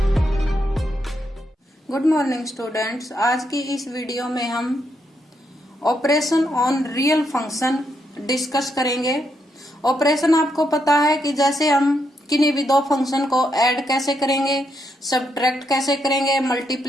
Good morning students. आज की इस वीडियो में हम operation on real function discuss करेंगे। ऑपरेशन आपको पता है कि जैसे हम किन्हीं भी दो फंक्शन को ऐड कैसे करेंगे, सब्ट्रैक्ट कैसे करेंगे,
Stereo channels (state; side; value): normal; both; correlation 0.79